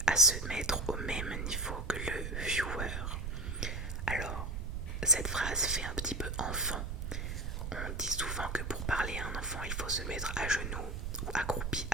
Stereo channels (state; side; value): noise; right; rumble, 4 dB below the sound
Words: à se mettre au même niveau que le viewer. Alors, cette phrase fait un petit peu enfant. On dit souvent que pour parler à un enfant, il faut se mettre à genoux ou accroupi